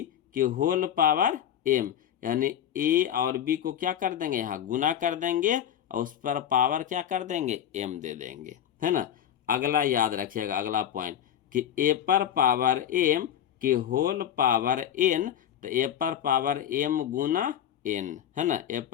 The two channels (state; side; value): quieter; right; 10.1 dB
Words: की होल पावर एम, यानी ए और बी को क्या कर देंगे, यहाँ गुना कर देंगे और उस पर पावर क्या कर देंगे, एम दे देंगे, है ना। अगला याद रखिएगा, अगला पॉइंट कि ए पर पावर एम की होल पावर एन, तो ए पर पावर एम गुना एन, है ना, ए